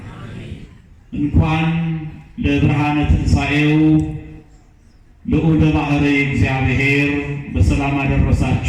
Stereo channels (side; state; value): both; identical; correlation 1.00